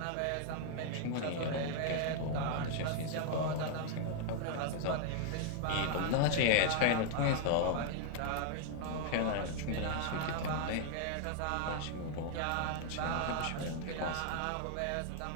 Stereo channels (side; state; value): both; different; correlation 0.00